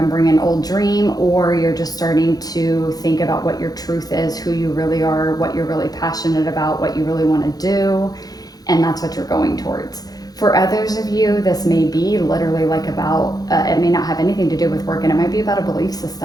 an old dream, or you're just starting to think about what your truth is, who you really are, what you're really passionate about, what you really want to do. And that's what you're going towards. For others of you, this may be literally like about, it may not have anything to do with work, and it might be about a belief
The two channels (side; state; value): right; late; 0.19 ms